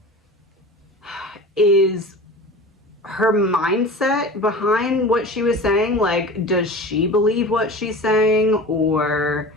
is her mindset behind what she was saying. Like, does she believe what she's saying, or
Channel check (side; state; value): both; normal; correlation 0.35